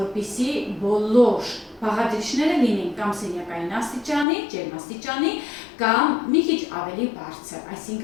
բոլոր բաղադրիչները լինեն կամ սենյակային աստիճանի, ջերմաստիճանի, կամ մի քիչ ավելի բարձր,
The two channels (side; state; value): right; drops out; at 4.2 s